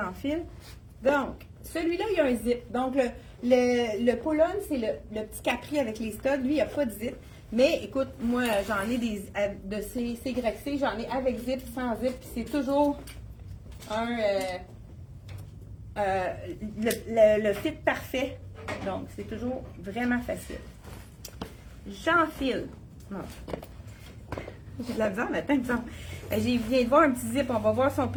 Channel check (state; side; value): identical; both; correlation 1.00